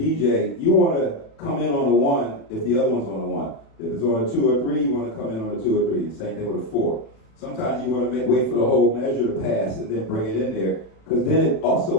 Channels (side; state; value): right; late; 37 ms